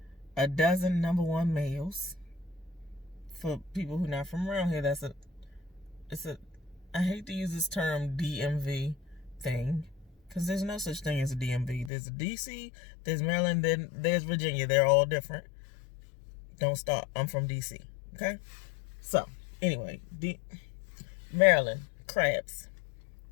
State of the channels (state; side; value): drops out; right; at 11.9 s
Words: a dozen number one males. For people who are not from around here, I hate to use this term DMV thing, because there's no such thing as a DMV. There's a DC, there's Maryland, then there's Virginia. They're all different. Don't start. I'm from DC. Okay? So, anyway, Maryland, crabs.